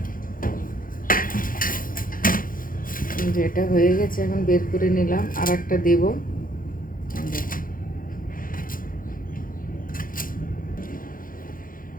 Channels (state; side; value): late; right; 0.40 ms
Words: এটা হয়ে গেছে, এখন বের করে নিলাম, আর একটা দেব।